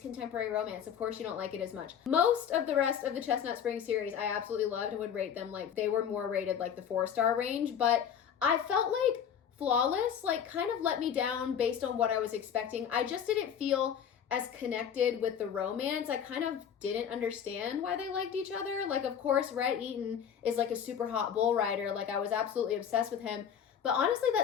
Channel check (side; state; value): right; quieter; 8.3 dB